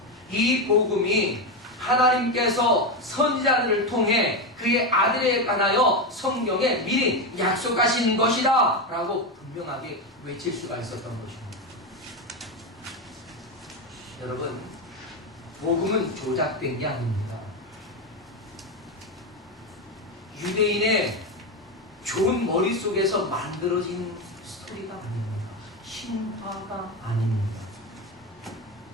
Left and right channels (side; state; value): both; normal; correlation 0.13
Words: 이 복음이 하나님께서 선지자들을 통해 그의 아들에 관하여 성경에 미리 약속하신 것이다 라고 분명하게 외칠 수가 있었던 것입니다. 여러분 복음은 조작된 게 아닙니다. 유대인의 좋은 머릿속에서 만들어진 스토리가 아닙니다. 신화가 아닙니다.